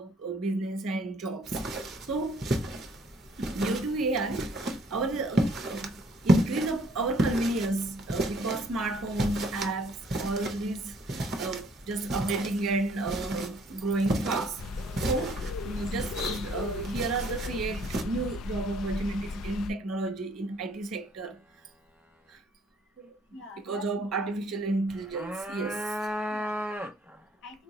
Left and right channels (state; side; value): normal; both; correlation 0.62